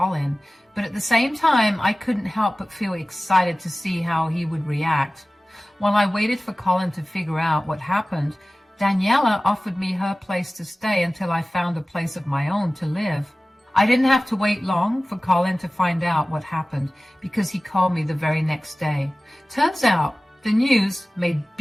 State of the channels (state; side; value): normal; both; correlation 0.97